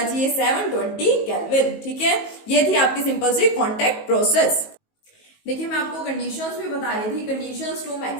720 केल्विन, ठीक है। ये थी आपकी सिंपल सी कॉन्टैक्ट प्रोसेस। देखिए मैं आपको कंडीशंस भी बता रही थी, conditions to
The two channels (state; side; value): late; right; 19 ms